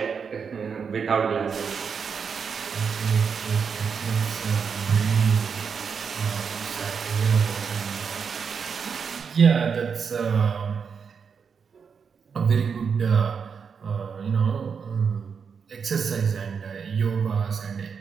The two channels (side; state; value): left; quieter; 6.2 dB